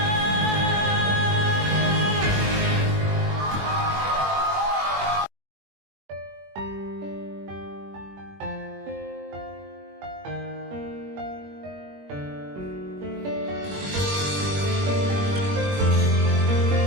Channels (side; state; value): left; late; 21 ms